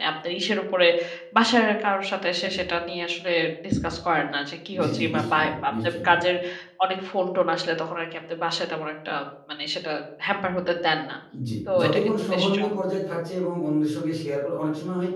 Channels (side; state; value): both; identical; correlation 1.00